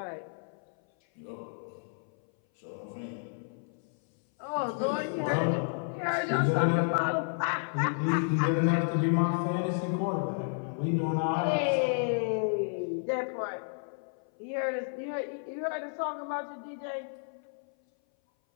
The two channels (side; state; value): right; silent; 57 dB below the other